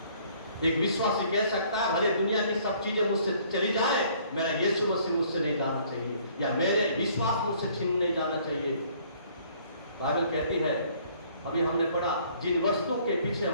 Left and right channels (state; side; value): inverted; both; correlation -0.59